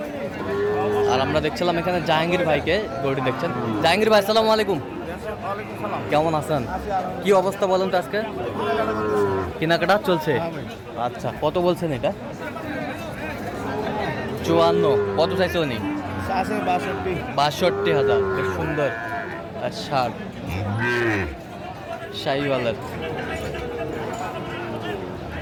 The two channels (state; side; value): identical; both; correlation 1.00